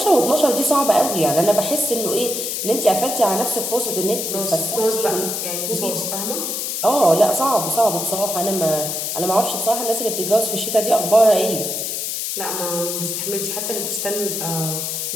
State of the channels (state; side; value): noise; left; hiss, 3 dB below the sound